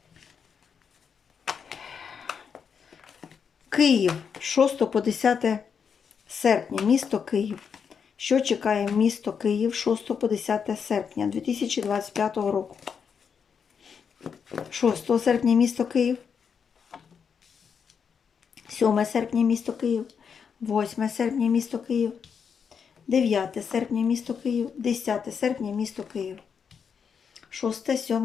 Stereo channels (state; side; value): quieter; right; 6.6 dB